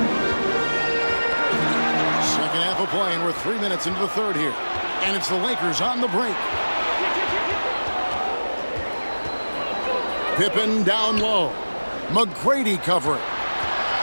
Second half of play, and we're 3 minutes into the third here. And it's the Lakers on the break. Pippen down low. McGrady covering.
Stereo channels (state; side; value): inverted; both; correlation -1.00